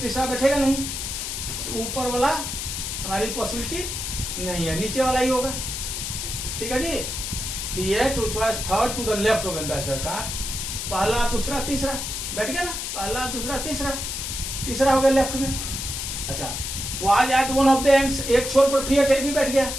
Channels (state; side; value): noise; left; hiss, 4 dB below the sound